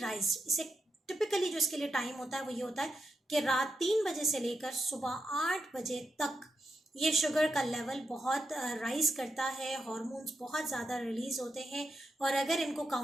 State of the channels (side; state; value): both; normal; correlation 0.86